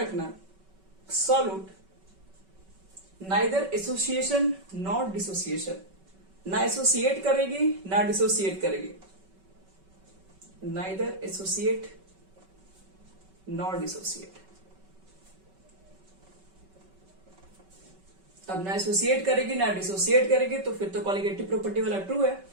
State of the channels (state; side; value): late; left; 5.3 ms